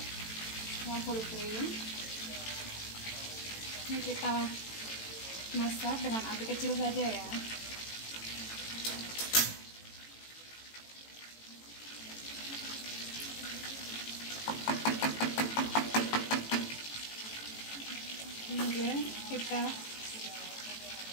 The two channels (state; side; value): late; right; 18 ms